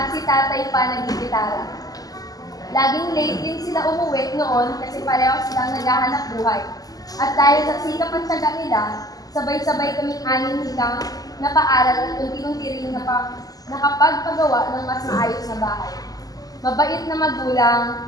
si tatay pa nagigitara. Laging late din sila umuwi noon kasi pareho silang naghahanap buhay. At dahil sa sikap at tiyaga nila, sabay-sabay kaming anim higang napaaral at unti-unti rin nakapagpagawa ng mas maayos na bahay. Mabait na magulang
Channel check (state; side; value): late; right; 0.17 ms